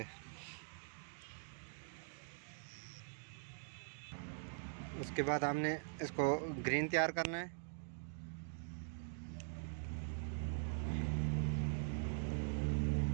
उसके बाद हमने इसको ग्रीन तैयार करना है।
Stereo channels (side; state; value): left; silent; digital silence